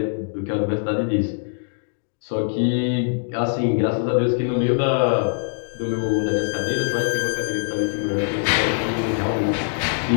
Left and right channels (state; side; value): silent; right; digital silence